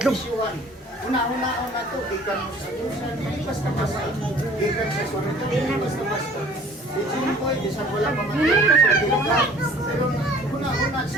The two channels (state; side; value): normal; both; correlation 0.51